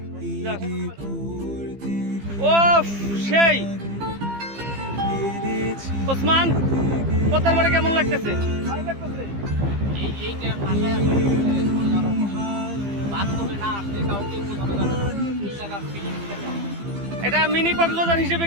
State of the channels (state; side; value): late; left; 15 ms